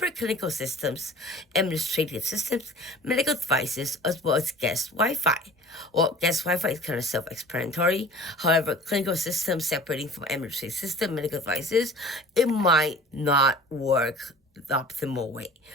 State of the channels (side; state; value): both; normal; correlation 0.43